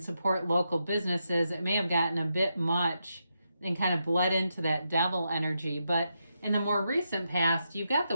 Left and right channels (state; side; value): inverted; both; correlation -0.84